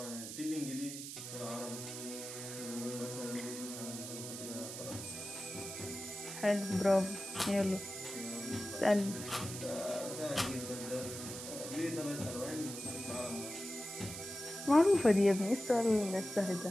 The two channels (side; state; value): right; noise; hiss, 8 dB below the sound